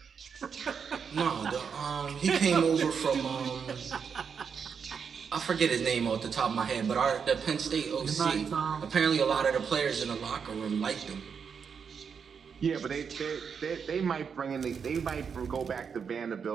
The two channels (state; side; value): quieter; left; 6.5 dB